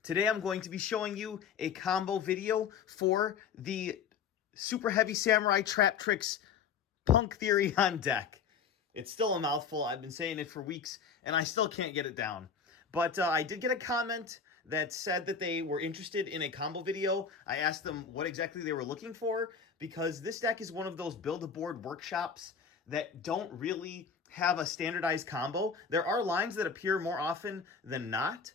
Today I'm going to be showing you a combo video for the Superheavy Samurai Traptrix Punk Therion deck. It's still a mouthful. I've been saying it for weeks, and I still can't get it down. But I did get a comment that said that they were interested in a combo video. I asked them what exactly they were looking for, because this deck is one of those build-a-board workshops that don't really have a standardized combo. There are lines that appear more often than not,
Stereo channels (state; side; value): quieter; right; 6.4 dB